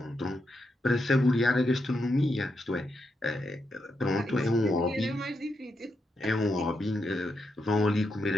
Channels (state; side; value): normal; both; correlation 0.84